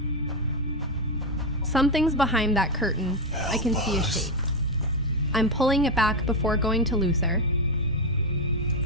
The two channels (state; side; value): normal; both; correlation 0.06